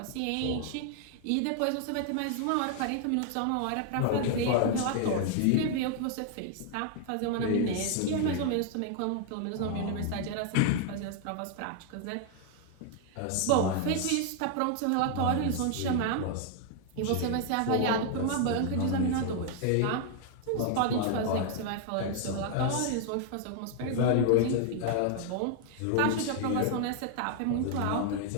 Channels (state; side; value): different; both; correlation 0.00